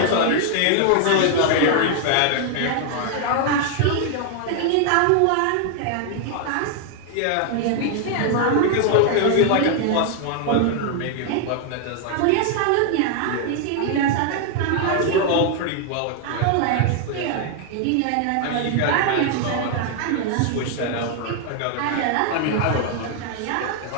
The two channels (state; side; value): different; both; correlation 0.00